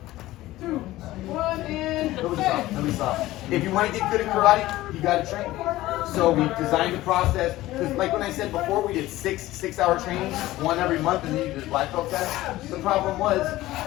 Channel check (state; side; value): quieter; right; 16.7 dB